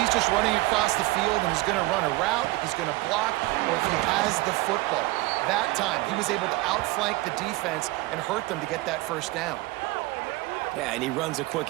he's just running across the field and is going to run a route, if he's going to block, or if he has the football. That time, he was able to outflank the defense and hurt them to get that first down. Yeah, and he runs a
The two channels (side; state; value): left; quieter; 20.4 dB